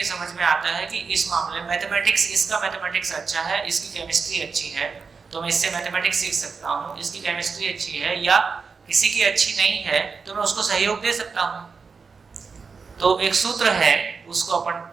समझ में आता है कि इस मामले में मैथमेटिक्स, इसका मैथमेटिक्स अच्छा है, इसकी केमिस्ट्री अच्छी है, तो मैं इससे मैथमेटिक्स सीख सकता हूँ। इसकी केमिस्ट्री अच्छी है या किसी की अच्छी नहीं है तो मैं उसको सहयोग दे सकता हूँ। तो एक सूत्र है, उसको अपन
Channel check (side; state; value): left; quieter; 5.1 dB